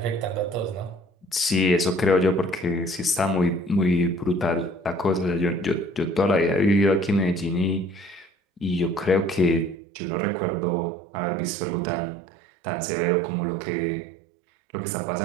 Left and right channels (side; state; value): left; drops out; at 9.8 s